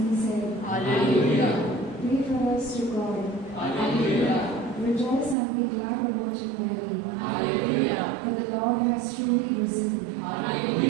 said. Hallelujah. Pray for us to God. Hallelujah. Rejoice and be glad about it daily. Hallelujah. For the Lord has truly risen.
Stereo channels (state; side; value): drops out; left; at 5.4 s